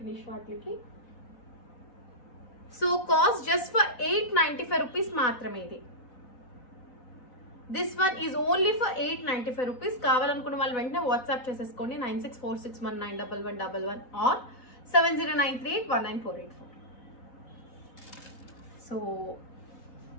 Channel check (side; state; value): right; late; 4.0 ms